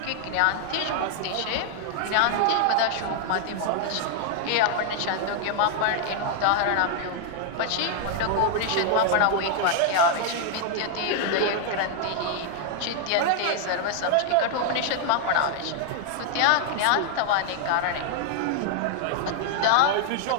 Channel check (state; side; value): different; both; correlation 0.00